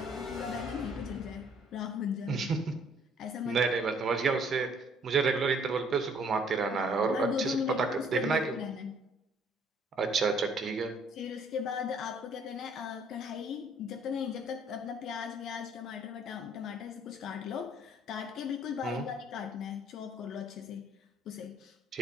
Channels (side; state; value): both; normal; correlation 0.60